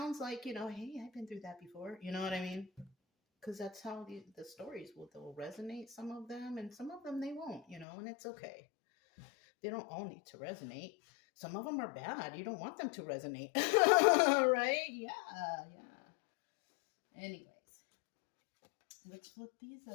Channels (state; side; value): drops out; right; at 7.9 s